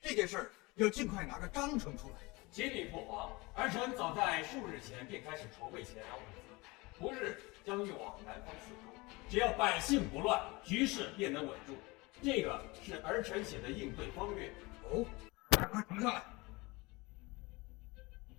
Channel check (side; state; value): right; quieter; 24.1 dB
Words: 件事儿要尽快拿个章程出来。启禀父皇，儿臣早在数日前便开始筹备前粮物资，不日将运往南方四周。只要百姓不乱，局势便能稳住。这个是儿臣写的应对方略。哦，快呈上来。